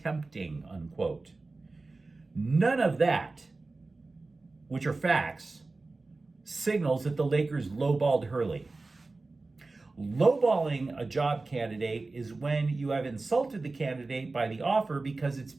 unquote. None of that, which are facts, signals that the Lakers lowballed Hurley. Lowballing a job candidate is when you have insulted the candidate by the offer because it's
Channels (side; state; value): left; quieter; 3.5 dB